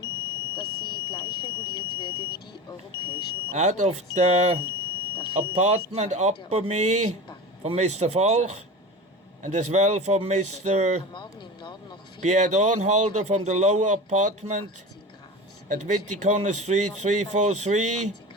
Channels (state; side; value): normal; both; correlation 0.30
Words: Out of the apartment upper me from Mr. Falk, and as well from Mr. Pierre Dornhalder from the lower apartment at Witticorner Street 343